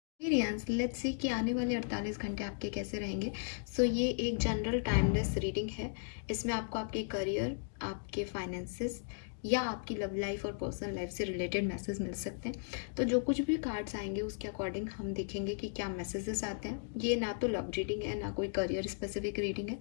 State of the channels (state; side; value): silent; right; digital silence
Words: Experience let's see कि आने वाले 48 घंटे आपके कैसे रहेंगे। ये एक जनरल टाइमलेस रीडिंग है। इसमें आपको आपके करियर, आपके फाइनेंसेस या आपकी लव लाइफ और पर्सनल लाइफ से रिलेटेड मैसेज मिल सकते हैं। तो जो कुछ भी कार्ड्स आएंगे उसके अकॉर्डिंग हम देखेंगे कि क्या मैसेजेस आते हैं। ये ना तो लव रीडिंग है, ना कोई करियर स्पेसिफिक रीडिंग है।